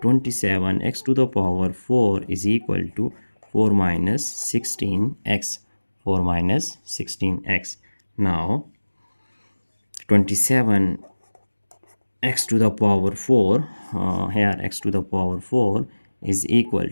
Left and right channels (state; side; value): inverted; both; correlation -1.00